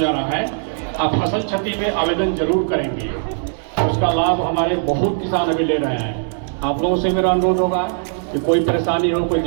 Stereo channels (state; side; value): silent; left; digital silence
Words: रहा है, आप फसल क्षति में आवेदन जरूर करेंगे। उसका लाभ हमारे बहुत किसान अभी ले रहे हैं। आप लोगों से मेरा अनुरोध होगा कि कोई परेशानी हो, कोई